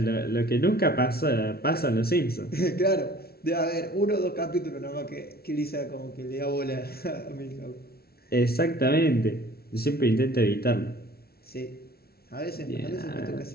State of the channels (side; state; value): right; late; 0.45 ms